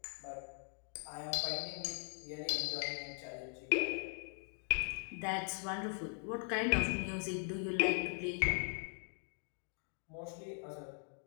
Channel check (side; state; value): right; silent; 51 dB below the other